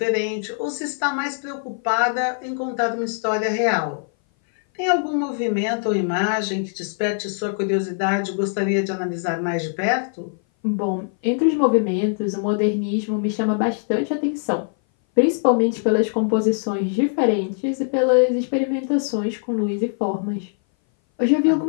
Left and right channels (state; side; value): silent; right; 59 dB below the other